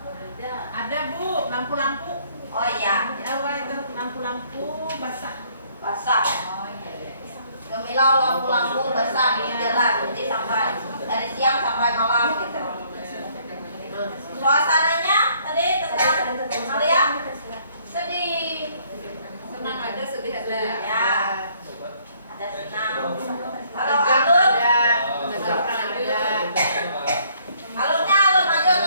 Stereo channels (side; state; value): both; inverted; correlation -0.64